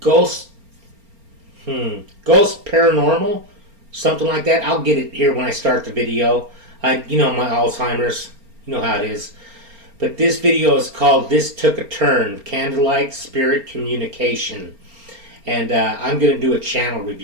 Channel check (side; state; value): left; late; 4.3 ms